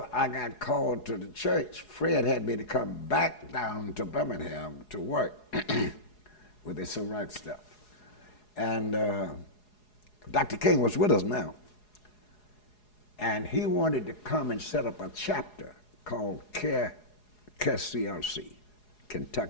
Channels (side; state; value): right; late; 4.8 ms